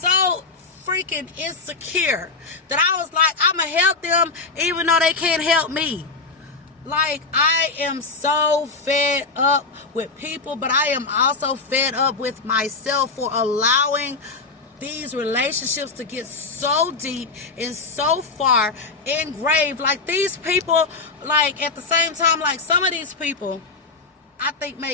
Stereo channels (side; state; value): right; quieter; 4.0 dB